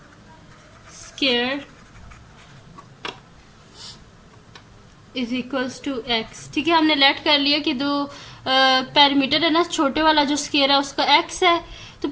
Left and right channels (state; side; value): identical; both; correlation 1.00